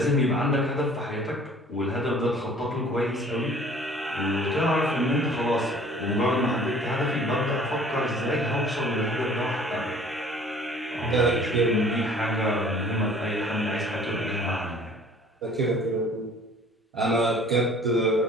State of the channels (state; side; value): normal; both; correlation 0.52